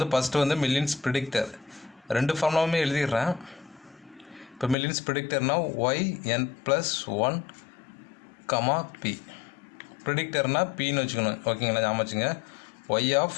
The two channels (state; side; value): drops out; right; at 4.8 s